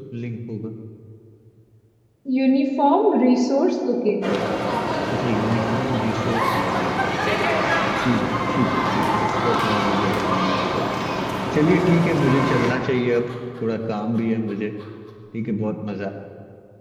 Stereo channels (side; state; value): both; identical; correlation 1.00